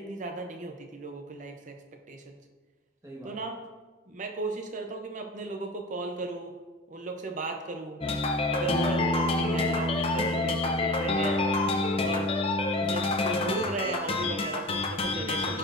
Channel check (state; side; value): normal; both; correlation 0.34